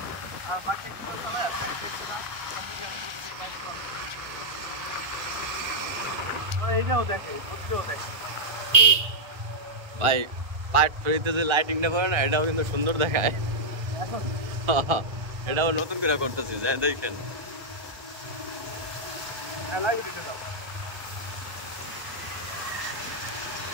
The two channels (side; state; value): left; late; 1.3 ms